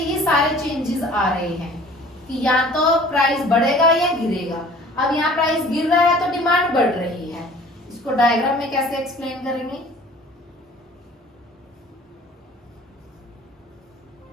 सारे चेंजेस आ रहे हैं कि या तो प्राइस बढ़ेगा या गिरेगा। अब यहाँ प्राइस गिर रहा है तो डिमांड बढ़ रही है, इसको डायग्राम में कैसे एक्सप्लेन करेंगे?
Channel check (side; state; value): both; normal; correlation 0.49